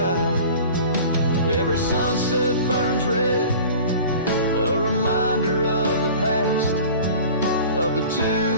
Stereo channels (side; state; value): both; inverted; correlation -0.42